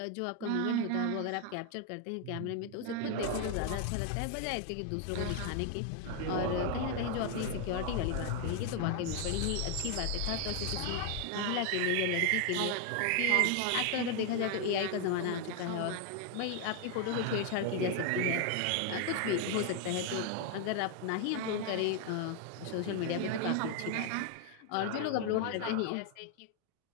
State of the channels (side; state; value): both; different; correlation 0.00